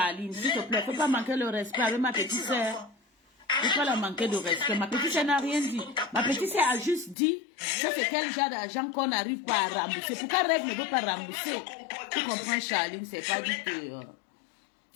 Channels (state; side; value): drops out; right; at 7.2 s